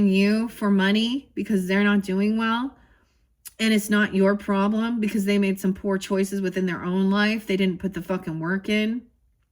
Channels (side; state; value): both; identical; correlation 1.00